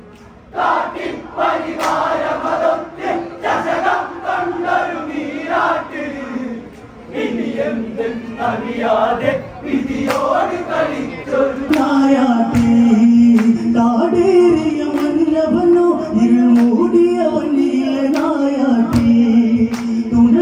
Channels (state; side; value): identical; both; correlation 1.00